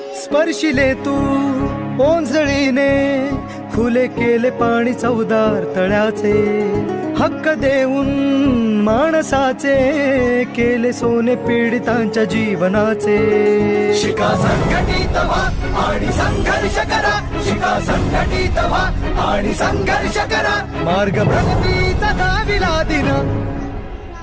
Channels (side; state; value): both; identical; correlation 1.00